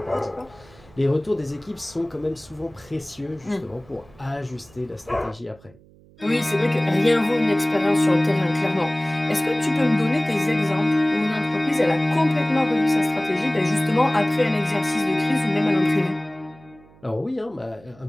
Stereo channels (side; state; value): right; noise; hum, 26 dB below the sound